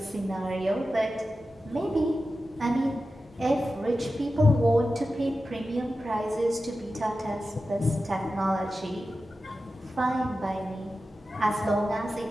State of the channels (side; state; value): both; normal; correlation 0.93